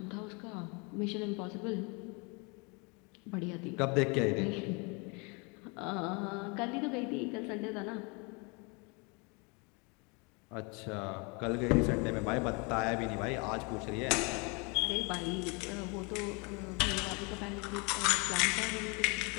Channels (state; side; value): quieter; right; 31.1 dB